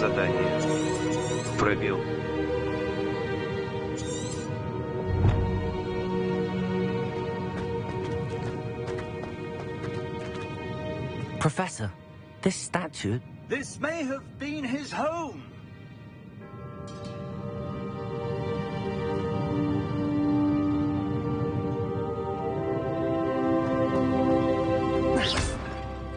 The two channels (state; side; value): identical; both; correlation 1.00